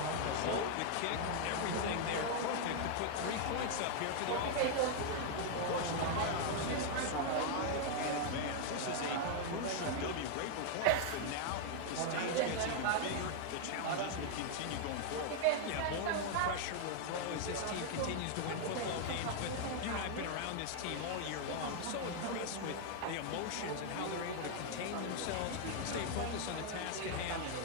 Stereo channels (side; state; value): both; different; correlation 0.00